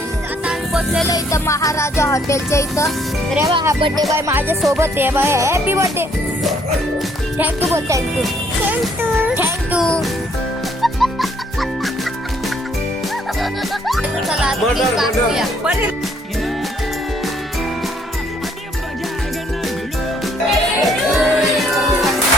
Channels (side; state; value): both; normal; correlation 0.66